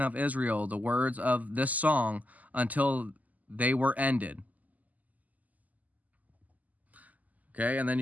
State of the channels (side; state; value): left; late; 0.078 ms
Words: Israel the words of this song until they were ended. Okay, and then